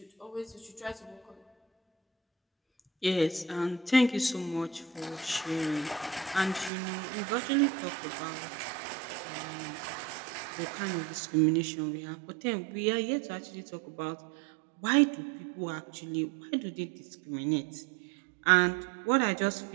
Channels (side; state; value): left; drops out; at 6.7 s